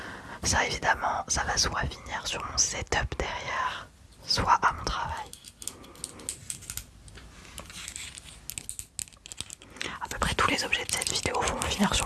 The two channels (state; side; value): identical; both; correlation 1.00